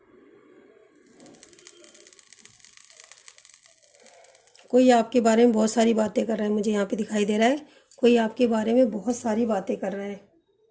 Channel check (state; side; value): identical; both; correlation 1.00